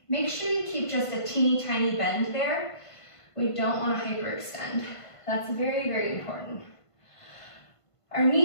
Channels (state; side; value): late; right; 1.5 ms